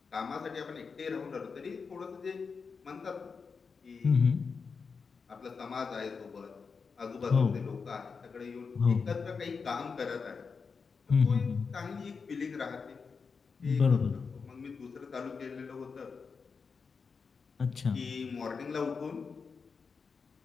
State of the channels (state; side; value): quieter; right; 5.3 dB